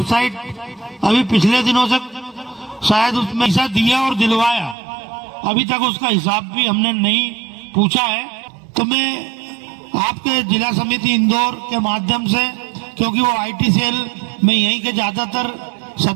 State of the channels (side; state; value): left; drops out; at 4.8 s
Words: अभी पिछले दिनों से शायद उसमें पैसा दिया और दिलवाया, अभी तक उसका हिसाब भी हमने नहीं पूछा है। तो मैं आपके जिला समिति इंदौर के माध्यम से, क्योंकि वो आईटी सेल में यहीं के ज्यादातर